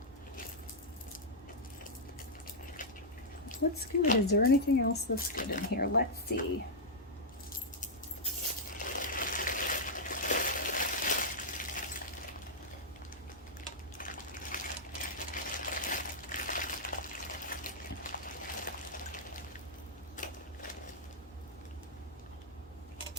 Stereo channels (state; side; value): normal; both; correlation -0.07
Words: What's good? Is there anything else that's good in here? Let's see.